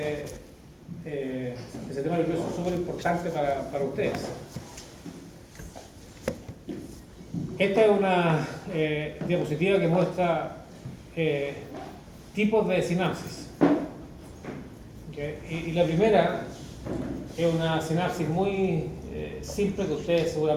el sistema nervioso es súper importante para ustedes. Esta es una diapositiva que muestra tipos de sinapsis. ¿Okay? Y la primera es una sinapsis muy simple que ustedes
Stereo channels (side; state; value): both; identical; correlation 1.00